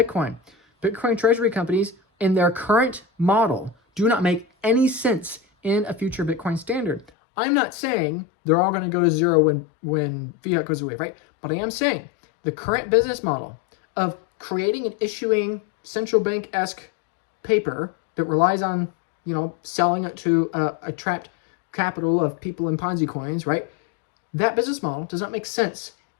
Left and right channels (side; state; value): right; drops out; at 7.1 s